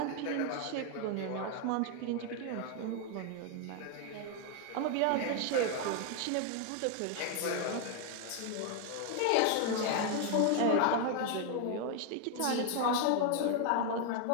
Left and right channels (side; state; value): both; different; correlation 0.01